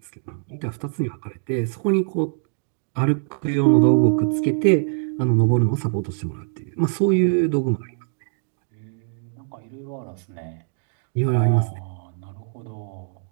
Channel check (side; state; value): left; silent; digital silence